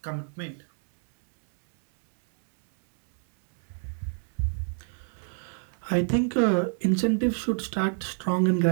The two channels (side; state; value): left; silent; 58 dB below the other